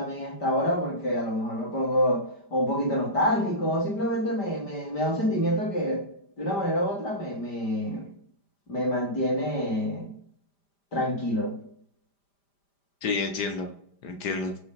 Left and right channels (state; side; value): late; right; 5.0 ms